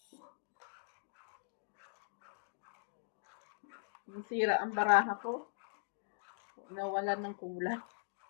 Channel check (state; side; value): silent; right; digital silence